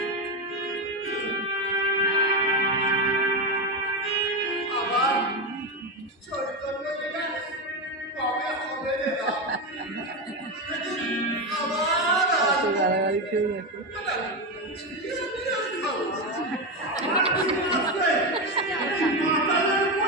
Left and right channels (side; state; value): both; normal; correlation 0.12